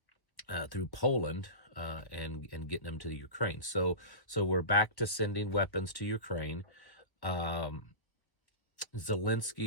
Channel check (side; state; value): right; late; 1.0 ms